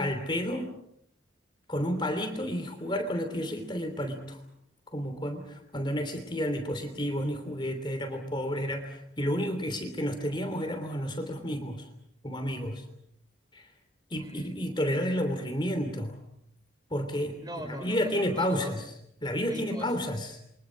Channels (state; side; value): normal; both; correlation 0.64